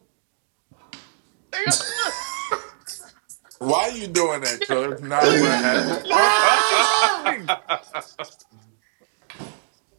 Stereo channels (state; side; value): silent; left; 63 dB below the other